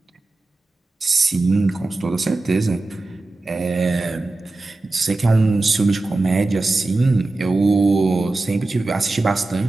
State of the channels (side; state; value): left; quieter; 3.1 dB